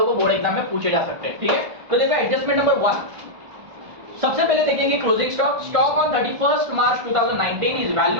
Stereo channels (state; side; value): late; left; 1.5 ms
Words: को बोर्ड एग्जाम में पूछे जा सकते हैं, ठीक है। तो देखो एडजस्टमेंट नंबर 1, सबसे पहले देखेंगे closing stock on 31st March 2019 is